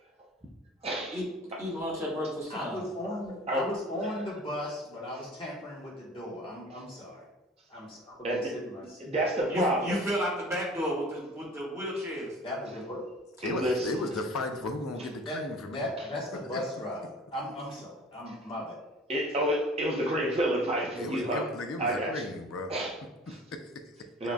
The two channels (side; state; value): both; normal; correlation 0.45